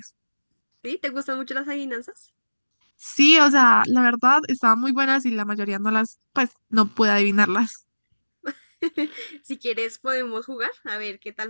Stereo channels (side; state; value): both; inverted; correlation -1.00